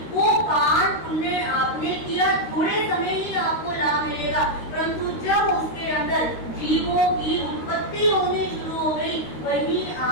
वो पान पुण्य आपने किया, थोड़े समय ही आपको लाभ मिलेगा। परंतु जब उसके अंदर जीवों की उत्पत्ति होनी शुरू हो गई, वही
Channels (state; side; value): late; right; 13 ms